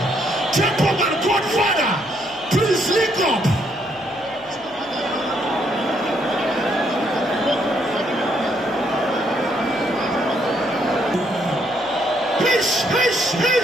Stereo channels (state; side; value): noise; left; hum, 28 dB below the sound